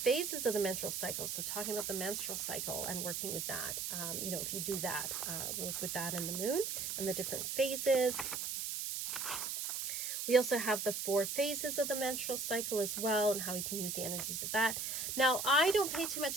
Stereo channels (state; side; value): noise; right; hiss, 3 dB below the sound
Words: of the menstrual cycle. So talking about the menstrual cycle and working with that. You know, if you do that, work with that in the moon and the different phases. We also have the 4 phases of the menstrual cycle as well, and how we can use the energies of that. Now, I don't pay too